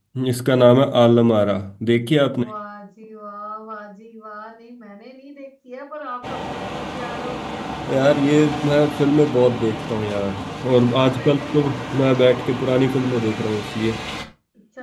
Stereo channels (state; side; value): identical; both; correlation 1.00